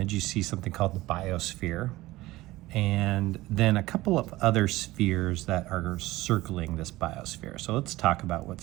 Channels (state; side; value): quieter; left; 18.2 dB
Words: you see something called the biosphere, and then a couple of other spheres that are circling this biosphere. So let's talk about what's